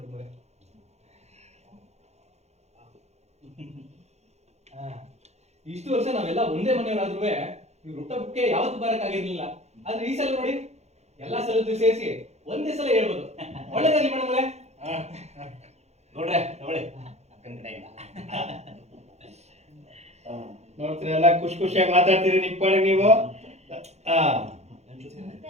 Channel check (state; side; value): late; left; 0.32 ms